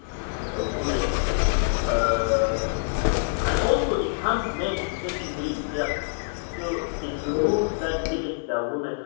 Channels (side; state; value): right; silent; digital silence